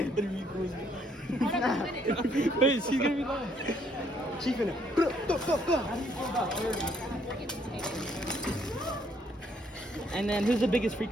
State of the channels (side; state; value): both; normal; correlation 0.68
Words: Interview Charisma. Wait, she's gonna be live. Chief in it. How do you feel about furries? And then, who's the biggest